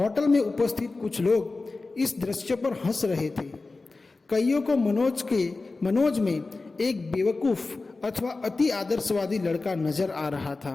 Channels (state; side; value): quieter; right; 3.6 dB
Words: में उपस्थित कुछ लोग इस दृश्य पर हंस रहे थे। कईयों को मनोज में एक बेवकूफ़ अथवा अति आदर्शवादी लड़का नजर आ रहा